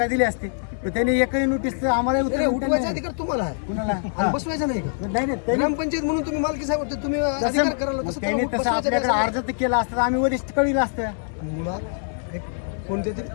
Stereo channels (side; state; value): right; silent; 63 dB below the other